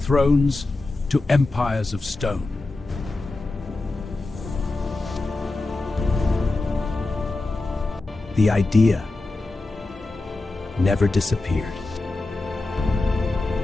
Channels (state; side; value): quieter; right; 3.1 dB